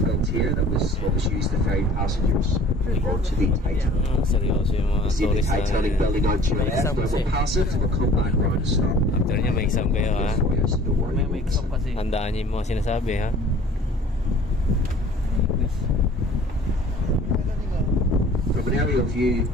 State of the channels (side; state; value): both; normal; correlation 0.49